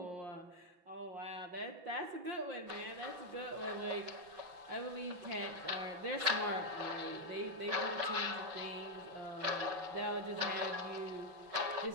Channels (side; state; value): left; late; 5.9 ms